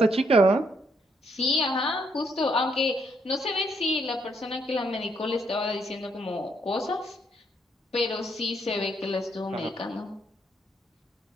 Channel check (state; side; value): normal; both; correlation 0.73